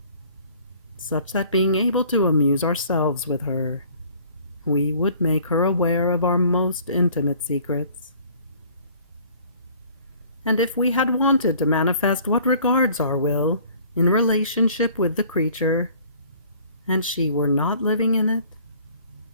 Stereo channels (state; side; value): inverted; both; correlation -0.53